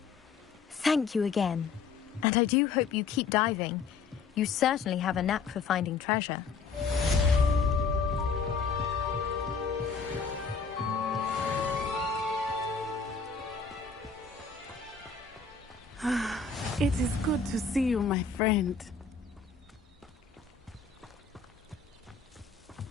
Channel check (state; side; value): quieter; right; 5.1 dB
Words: Thank you again, and I do hope you keep diving. You certainly have a knack for finding treasure. It is good to see you, my friend.